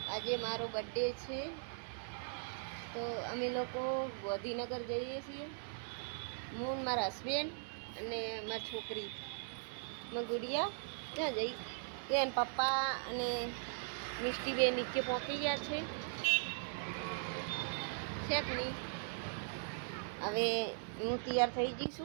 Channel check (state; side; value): silent; left; digital silence